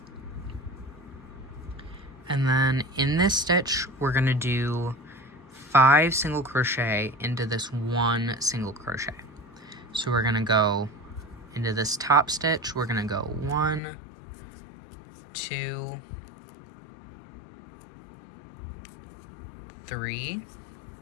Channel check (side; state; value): right; drops out; at 13.8 s